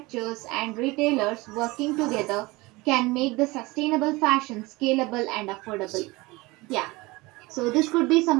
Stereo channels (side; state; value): left; quieter; 22.5 dB